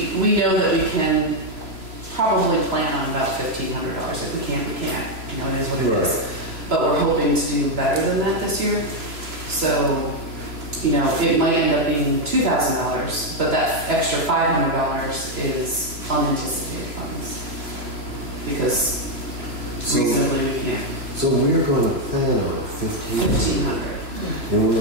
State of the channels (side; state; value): left; late; 3.0 ms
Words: know that we can probably plan on about $1,500. If we can't, we can't. It is what it is. But we're hoping to do better than that this year. So, it might end up being $2,000, but that extra $500 is unanticipated funds. Because reasonably we can't. So we're going to plan on $1,500. And we're